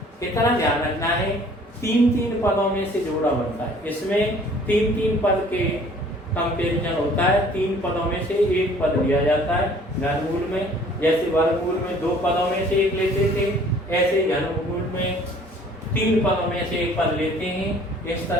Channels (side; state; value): both; normal; correlation 0.54